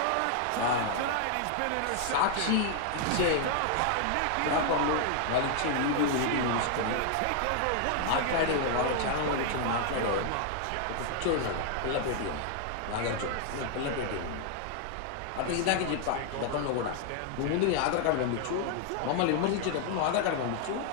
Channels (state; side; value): different; both; correlation 0.00